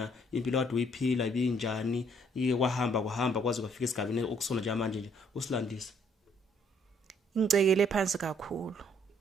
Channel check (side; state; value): both; normal; correlation 0.65